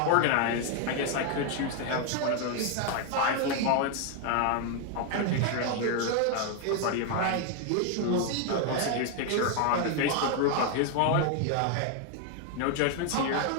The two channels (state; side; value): different; both; correlation 0.01